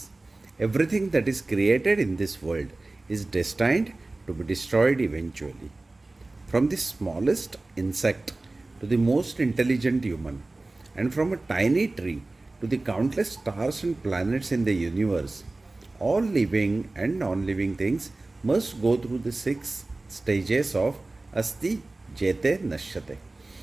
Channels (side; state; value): left; quieter; 3.1 dB